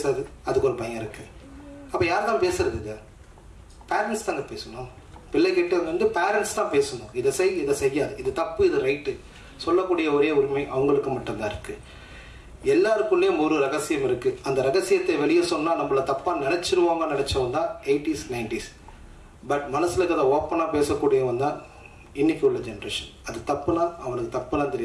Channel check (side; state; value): both; identical; correlation 1.00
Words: அதுக்கு ஒரு பையன் இருக்குது. அப்போ யார் தான் பேசுறது? இது பேரண்ட்ஸ் தாங்க பேசணும். பிள்ளைகிட்ட வந்து பேரண்ட்ஸ் தான் பேசணும். இதை செய், இதை செய்யாது, இது தப்பு, இது ரைட்டு சொல்லக்கூடிய ஒரே உரிமை அவங்களுக்கு மட்டும்தான் இருக்குது. எல்லாருக்குள்ளேயும் ஒரு ரகசியம் இருக்குது. அந்த ரகசியத்தை வெளியே சொன்னால் நம்மளை தப்பாக நினச்சிருவாங்க நினச்சவன் தான் 80s 90s. பட் மனசில் இருக்கிறத ஓப்பனாக பேசக்கூடியவன் தான் இன்னைக்கு உள்ள ஜென்ரேஷன். அது தப்புனா அவனுக்கு தப்புலாம்